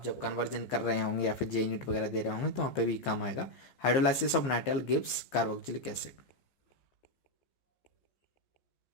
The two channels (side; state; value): right; late; 15 ms